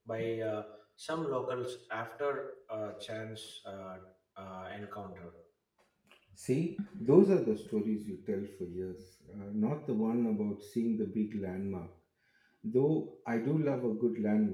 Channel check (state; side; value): identical; both; correlation 1.00